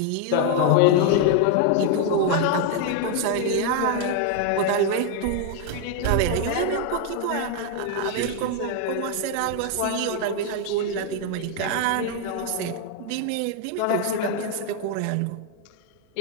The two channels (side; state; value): both; different; correlation 0.00